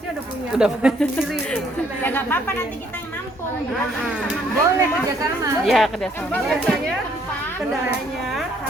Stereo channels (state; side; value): normal; both; correlation 0.66